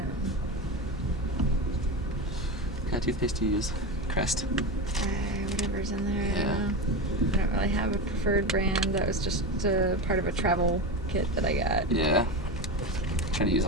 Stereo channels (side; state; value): left; noise; hum, 12 dB below the sound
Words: What kind of toothpaste do you use? Crest. Whatever's in there. I Yeah. don't know. I don't really have a preferred brand. That was just part of a travel kit that I got. Yeah. Try to use